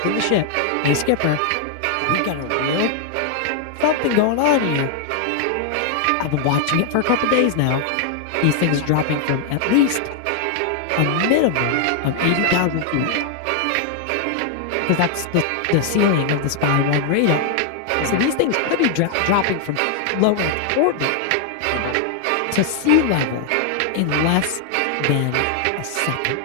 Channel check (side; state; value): both; different; correlation 0.00